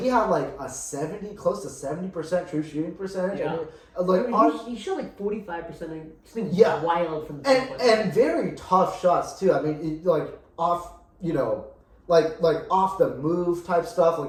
had close to 70% true shooting percentage. Yeah. And, he shot 45%. Something wild from the and very tough shots too. Off, off the move type stuff,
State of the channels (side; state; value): both; identical; correlation 1.00